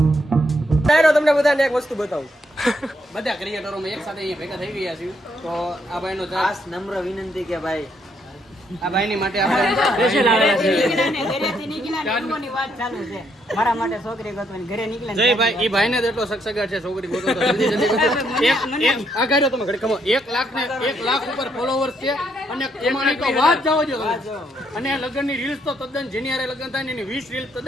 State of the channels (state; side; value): normal; both; correlation 0.74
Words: તમને બધાને એક વસ્તુ બતાવું. બધા ક્રિએટરો એક સાથે ભેગા થઈ ગયા છે. તો આ ભાઈનો ખાસ નમ્ર વિનંતી કે ભાઈ આ ભાઈની માટે આપણે સ્પેશિયલ આવેલા છે. ઘરેથી નીકળ્યા ની વાત ચાલુ છે. મારા માટે છોકરી ગોતવાની ઘરે નીકળ્યા. જય ભાઈ ઈ ભાઈને જ એટલો સગસગાટ છે છોકરી ગોતો તો જલ્દી જલ્દી ગોતો. એક આ ગાડ્યો તમે ઘડી કમો 1 લાખ ઉપર ફોલોવર્સ છે અને એમાંની તો વાત જાવ જો અને લગ્નની રીલ્સ તો તદ્દન જેની હારે લગ્ન થાય ને એની 20 રીલ્સ